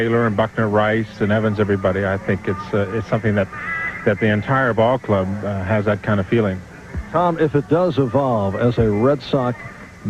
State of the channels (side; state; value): both; identical; correlation 1.00